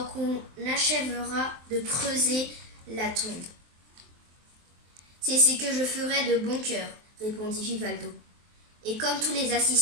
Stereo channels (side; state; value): left; late; 23 ms